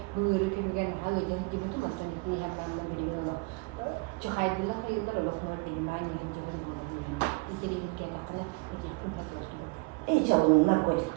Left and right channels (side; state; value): left; quieter; 29.2 dB